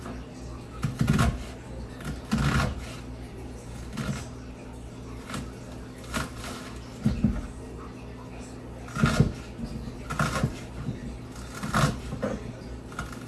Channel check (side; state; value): both; identical; correlation 1.00